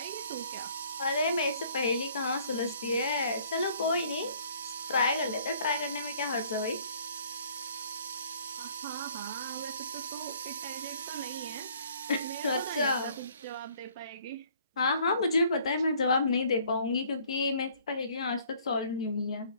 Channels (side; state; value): both; inverted; correlation -0.58